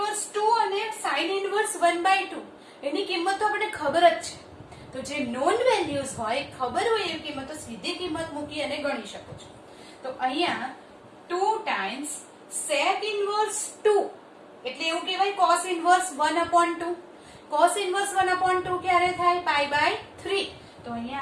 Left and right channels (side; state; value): both; identical; correlation 1.00